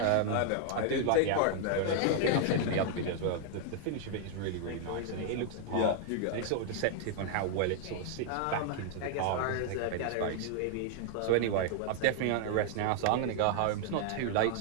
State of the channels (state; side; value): different; both; correlation 0.00